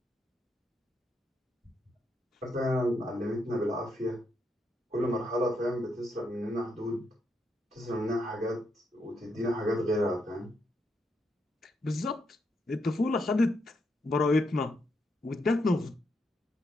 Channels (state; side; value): normal; both; correlation 0.80